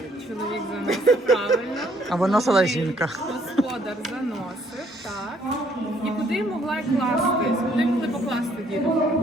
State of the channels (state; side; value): normal; both; correlation 0.65